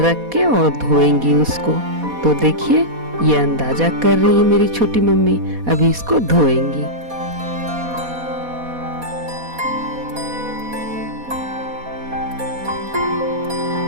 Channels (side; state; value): left; late; 4.2 ms